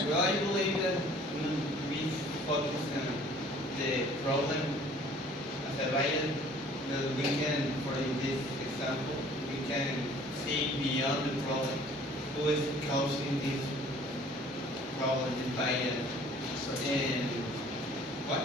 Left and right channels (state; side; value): normal; both; correlation 0.53